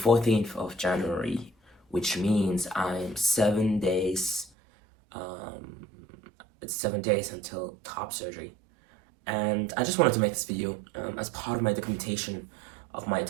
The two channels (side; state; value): left; drops out; at 4.5 s